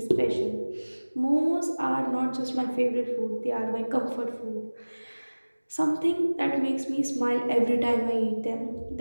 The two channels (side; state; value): both; inverted; correlation -1.00